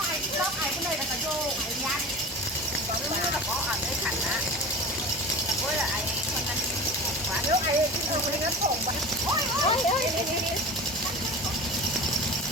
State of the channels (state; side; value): normal; both; correlation 0.32